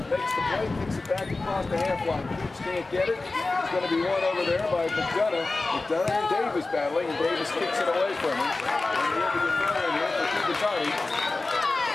makes the play, kicks it back across the half line. Coops can't get it. It's going to be won over there by McDonough. McDonough and Davis battling, and Davis kicks it away from him. And we'll be throwing here for Kibitati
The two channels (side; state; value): right; quieter; 3.4 dB